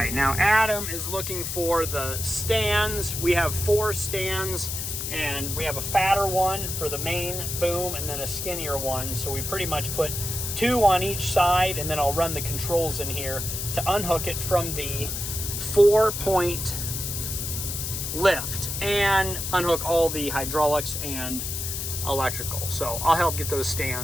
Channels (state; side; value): noise; left; hiss, 4 dB below the sound